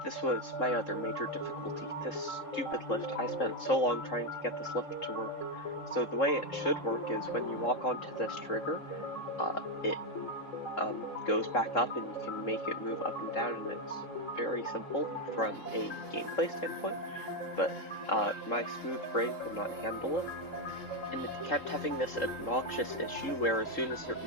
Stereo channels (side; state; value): right; late; 3.7 ms